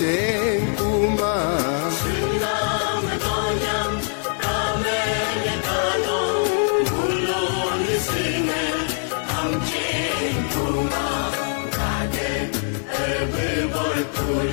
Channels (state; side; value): silent; right; 56 dB below the other